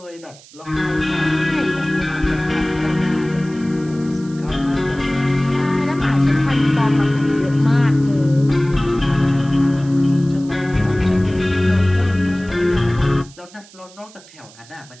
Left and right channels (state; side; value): noise; right; hiss, 23 dB below the sound